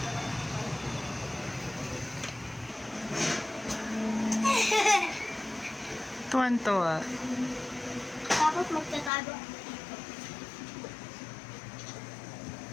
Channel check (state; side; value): drops out; right; at 9.1 s